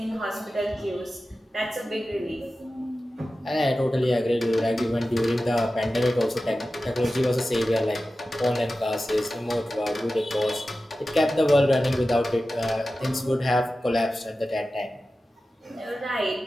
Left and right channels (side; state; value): both; normal; correlation 0.94